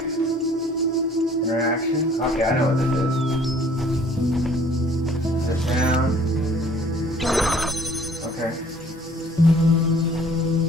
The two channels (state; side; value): normal; both; correlation 0.56